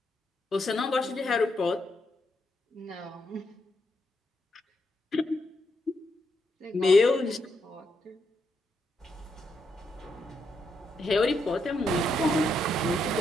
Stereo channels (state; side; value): normal; both; correlation 0.80